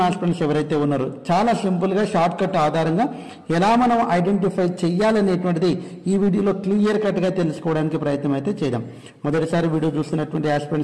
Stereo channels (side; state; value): both; identical; correlation 1.00